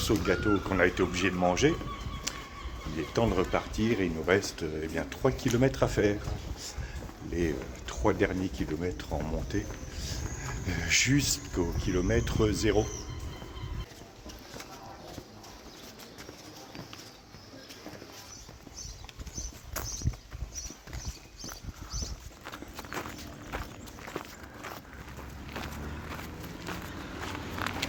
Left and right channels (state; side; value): identical; both; correlation 1.00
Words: de gâteau qu'on a été obligé de manger, il est temps de repartir et il nous reste 3 km à faire. Les 3 derniers kilomètres en montée jusqu'au kilomètre 0.